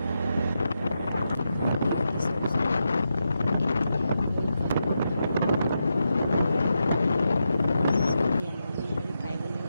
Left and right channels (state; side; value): inverted; both; correlation -0.86